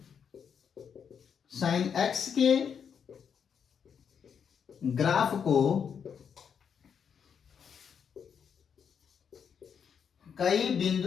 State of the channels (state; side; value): quieter; right; 7.3 dB